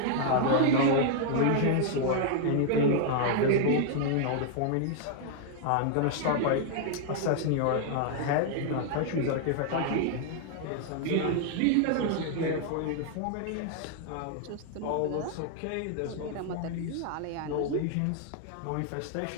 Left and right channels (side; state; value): both; different; correlation 0.00